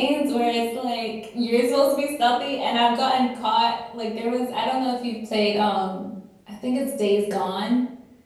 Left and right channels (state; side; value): identical; both; correlation 1.00